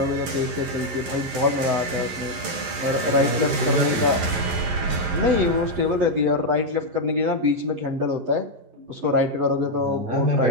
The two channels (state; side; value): late; left; 11 ms